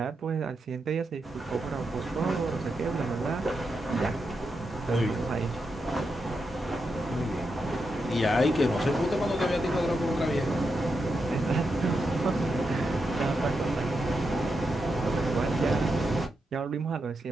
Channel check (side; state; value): both; normal; correlation 0.85